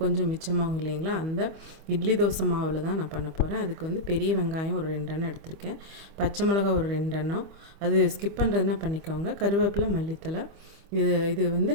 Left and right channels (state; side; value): late; left; 25 ms